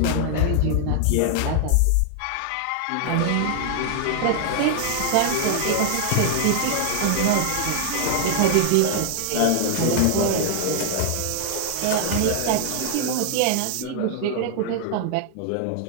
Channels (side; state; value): both; different; correlation 0.00